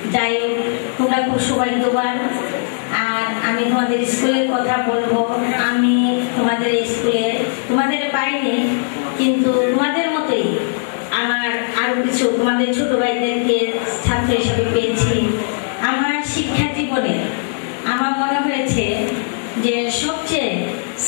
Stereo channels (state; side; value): silent; right; digital silence